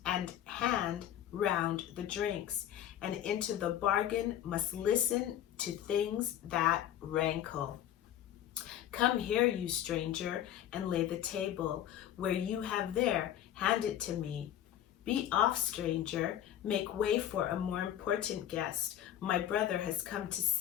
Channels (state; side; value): quieter; right; 11.3 dB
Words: and hand round the drinks, and into the bargain must listen to things that rankle. Come here, you stranger, and lay the table. Where you have there, hand it to me. Be off, stranger. Make way for a more important guest. My brother has come to